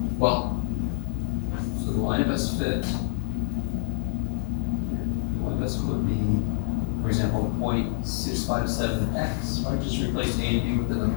Well, so the line of best fit. The line of best fit would be, for example, 0.657x. Right? Just replace a and b with the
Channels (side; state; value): right; silent; digital silence